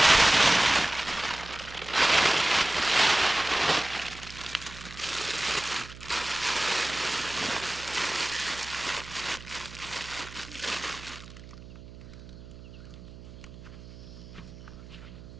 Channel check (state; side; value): noise; right; hum, 16 dB below the sound